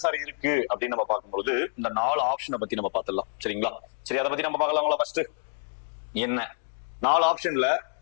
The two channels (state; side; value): silent; right; 57 dB below the other